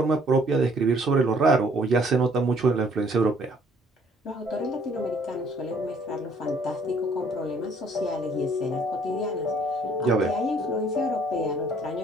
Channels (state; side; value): normal; both; correlation 0.61